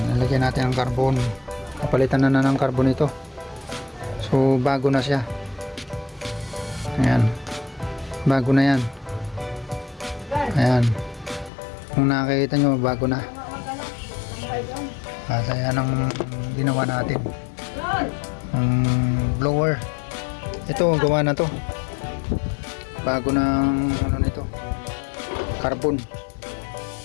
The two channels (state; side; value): drops out; right; at 11.5 s